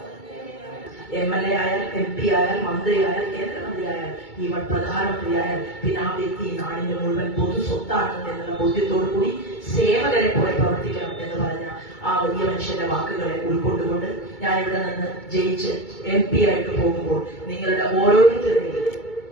MLA ആയാൽ MP ആയാൽ മന്ത്രിയായാൽ കേന്ദ്രമന്ത്രിയായാൽ ഈവൻ പ്രധാനമന്ത്രിയായാൽ പിന്നെ ആ വ്യക്തി നാടിന്റെ മുഴുവൻ പൊതു സ്വത്താണെന്ന് എന്നുള്ള ബോധ്യത്തോടു കൂടി സേവകരെ പോലെ പ്രവർത്തിക്കണം എന്ന് പറഞ്ഞ ആ വലിയ മനുഷ്യന്റെ വാക്കുകളെ ഉൾക്കൊണ്ടുകൊണ്ട് ഞാൻ ഇവിടെ നിന്ന് ജയിച്ച് MP ആയിട്ട് പോകുമ്പോൾ നിങ്ങളുടെ ഓരോരുത്തരുടെയും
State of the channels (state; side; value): late; right; 2.2 ms